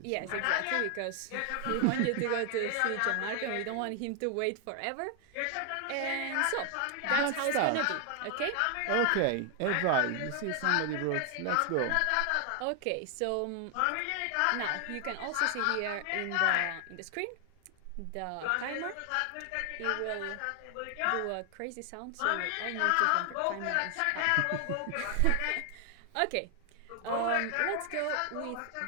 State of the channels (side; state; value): both; different; correlation 0.00